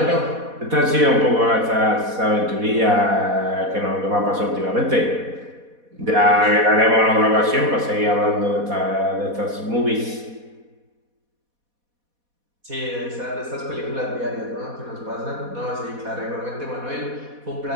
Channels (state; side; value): late; left; 4.1 ms